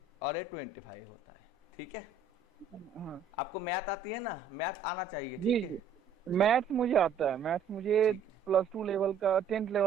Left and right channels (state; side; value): quieter; left; 5.9 dB